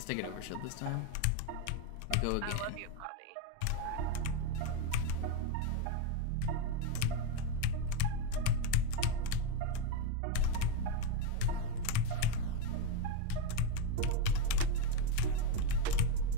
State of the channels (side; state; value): both; different; correlation 0.03